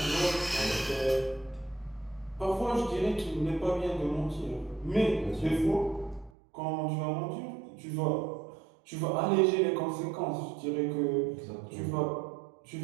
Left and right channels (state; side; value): drops out; left; at 6.3 s